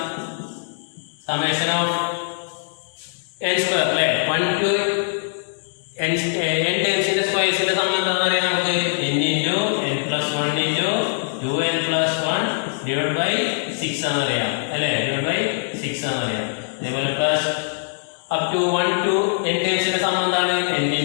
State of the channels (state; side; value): silent; right; digital silence